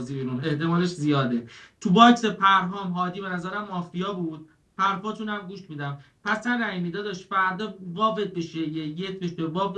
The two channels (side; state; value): both; identical; correlation 1.00